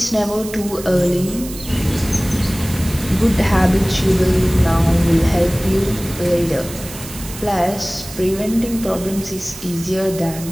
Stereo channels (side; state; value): right; noise; hiss, 13 dB below the sound